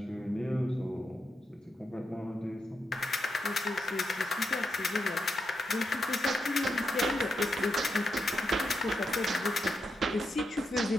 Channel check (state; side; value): normal; both; correlation 0.84